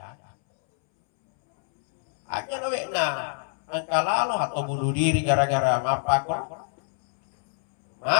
Aja nawe na angka lalu atau bunuh diri gara-gara mapakro.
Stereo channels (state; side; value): silent; right; 62 dB below the other